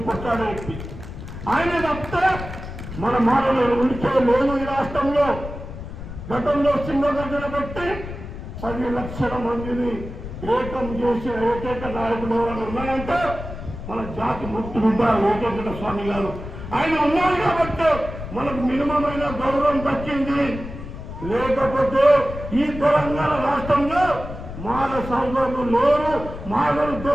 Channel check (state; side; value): noise; left; rumble, 10 dB below the sound